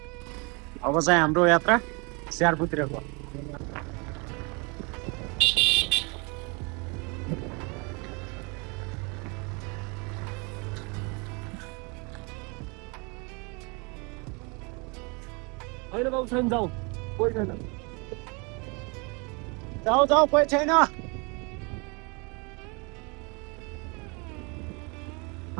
अब चाहिँ हाम्रो यात्रा स्याहारपुतिरको होइन बाबु छैन जाउँ कोही छैन जाऊ जाऊ कोही छैन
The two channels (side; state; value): left; quieter; 30.9 dB